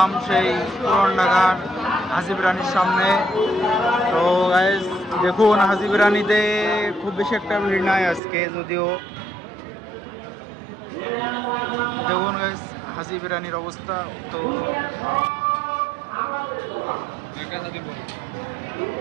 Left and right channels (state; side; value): drops out; left; at 8.2 s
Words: সেই পুরান ঢাকার হাজির বিরিয়ানির সামনে। তো গাইস দেখুন, হাজির বিরিয়ানিতে খুব বেশি একটা ভিড় নাই আজকে, যদিও দেখুন গাইস হাজির বিরিয়ানির অবস্থা। তো